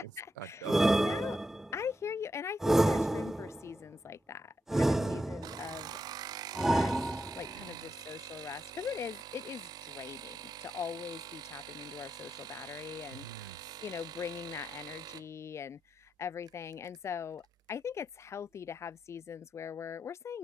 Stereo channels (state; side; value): normal; both; correlation 0.85